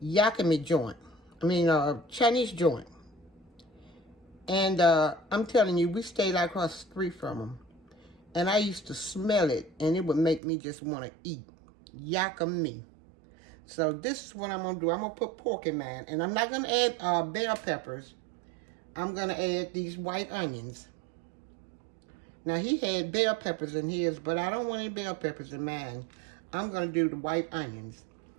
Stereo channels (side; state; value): left; drops out; at 10.4 s